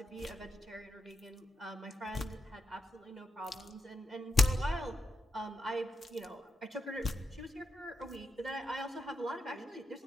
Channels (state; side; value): normal; both; correlation 0.85